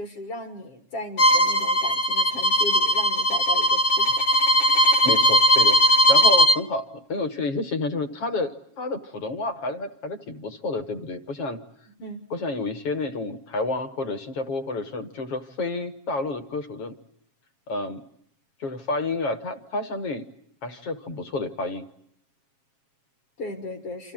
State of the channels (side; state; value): right; late; 7.4 ms